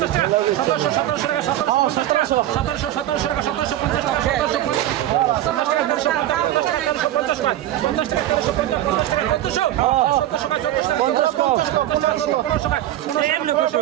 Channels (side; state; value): left; quieter; 13.3 dB